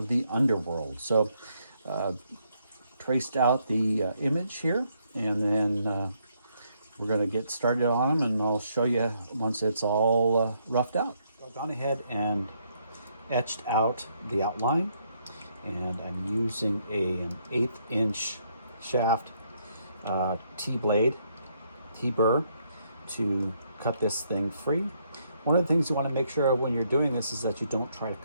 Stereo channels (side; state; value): both; inverted; correlation -0.73